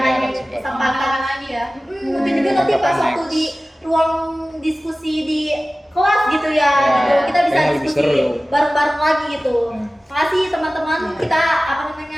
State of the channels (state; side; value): normal; both; correlation 0.97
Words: kesempatan lagi ya. Mungkin juga nanti pas waktu di ruang diskusi di kelas gitu ya, gitu. Kita bisa diskusi bareng-bareng lagi gitu. Makasih teman-teman, kita